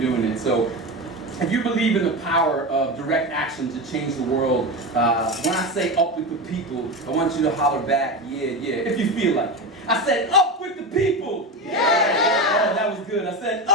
it. So if you believe in the power of direct action to change the world, when I say up with the people, I want you to holler back, yeah, yeah, if you feel like it. I said, up with the people! Yeah! Oh, that was good. I said,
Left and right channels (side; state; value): both; normal; correlation 0.21